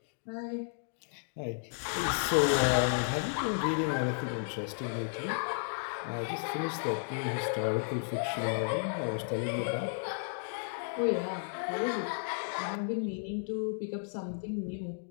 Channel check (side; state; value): right; silent; digital silence